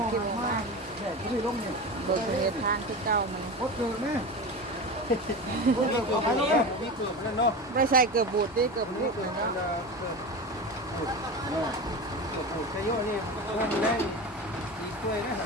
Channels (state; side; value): normal; both; correlation 0.26